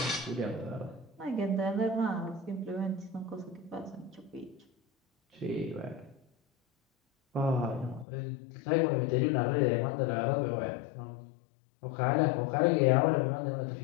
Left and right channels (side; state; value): right; drops out; at 8.1 s